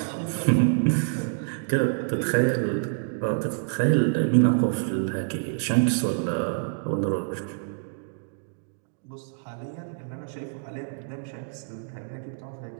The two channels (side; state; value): left; silent; digital silence